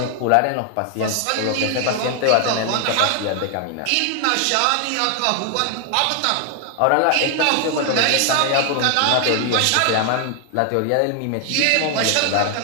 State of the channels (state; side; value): different; both; correlation 0.00